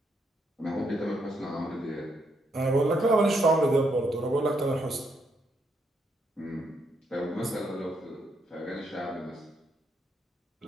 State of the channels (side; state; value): both; normal; correlation 0.76